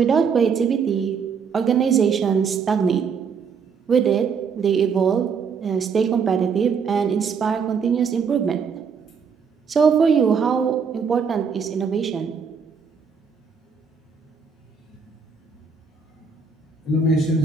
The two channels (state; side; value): quieter; left; 6.0 dB